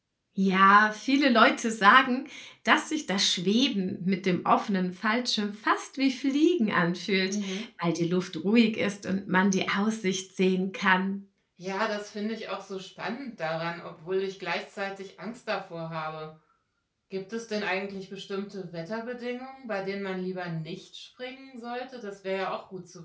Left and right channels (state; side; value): identical; both; correlation 1.00